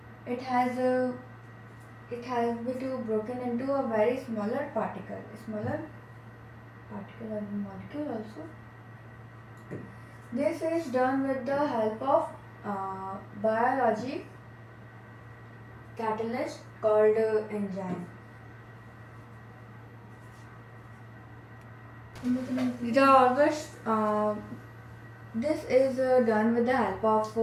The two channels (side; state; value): both; identical; correlation 1.00